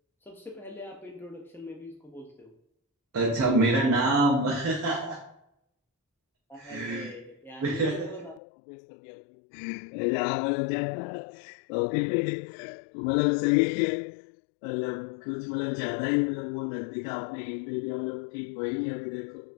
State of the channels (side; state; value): right; drops out; at 8.4 s